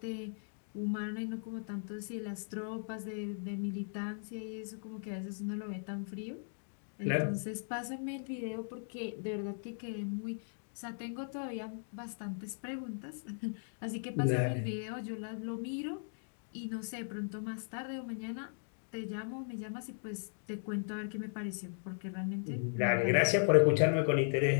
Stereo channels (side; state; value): right; silent; digital silence